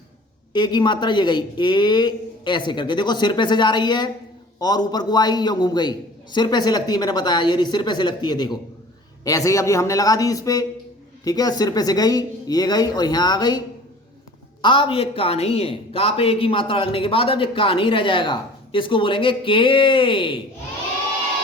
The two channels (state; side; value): normal; both; correlation 0.45